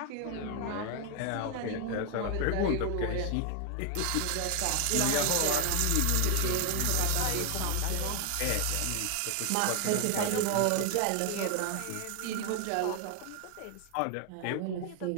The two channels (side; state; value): both; different; correlation 0.00